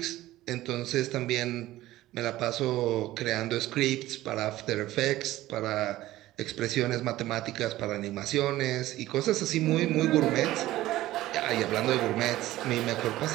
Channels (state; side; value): quieter; left; 15.9 dB